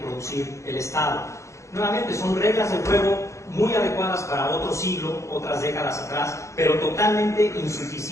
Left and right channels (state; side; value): late; right; 0.14 ms